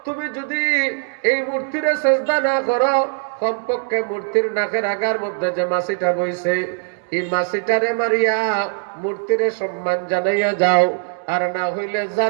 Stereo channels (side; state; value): left; silent; 64 dB below the other